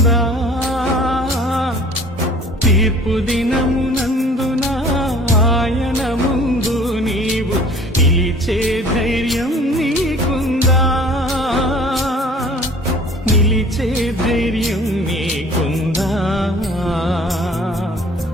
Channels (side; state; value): both; normal; correlation 0.49